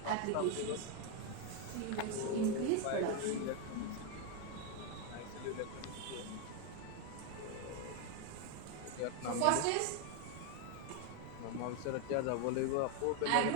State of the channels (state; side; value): different; both; correlation 0.01